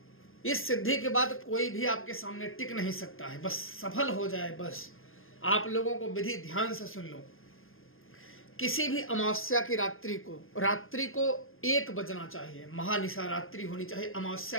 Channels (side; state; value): right; late; 0.60 ms